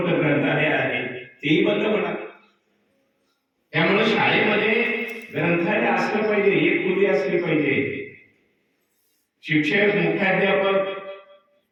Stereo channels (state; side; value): identical; both; correlation 1.00